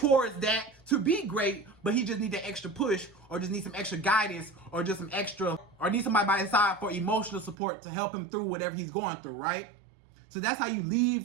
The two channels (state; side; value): drops out; left; at 7.6 s